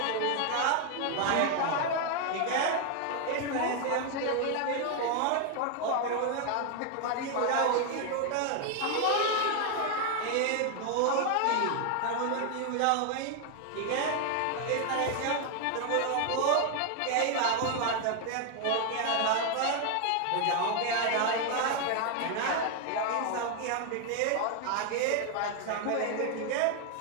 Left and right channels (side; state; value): both; different; correlation 0.00